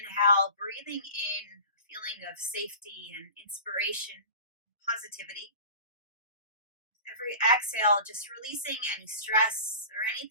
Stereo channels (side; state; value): both; inverted; correlation -0.37